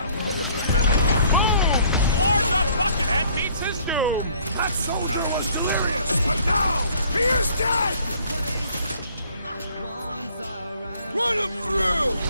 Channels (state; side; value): inverted; both; correlation -0.59